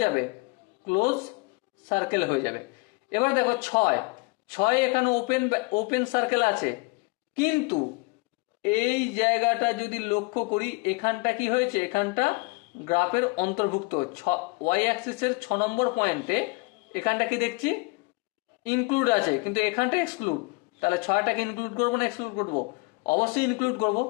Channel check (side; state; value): right; quieter; 27.7 dB